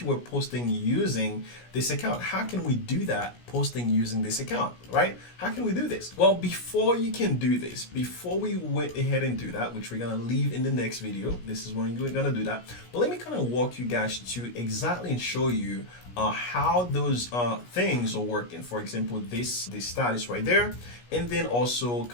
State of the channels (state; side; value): late; right; 17 ms